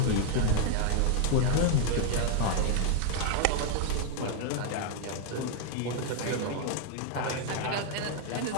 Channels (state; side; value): different; both; correlation 0.00